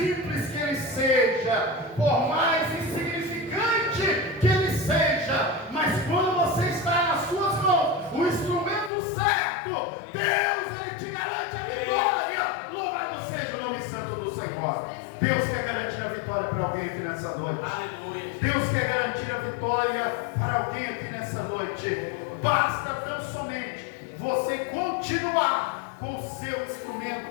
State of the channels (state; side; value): drops out; right; at 8.9 s